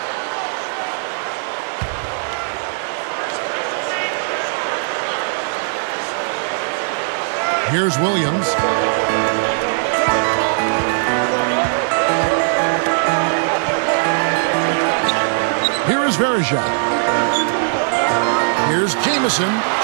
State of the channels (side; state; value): left; silent; digital silence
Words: Here's Williams. Here is Varejao. Here's Jamison.